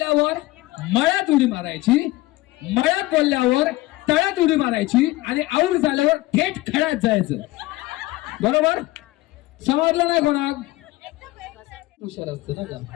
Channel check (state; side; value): quieter; right; 19.2 dB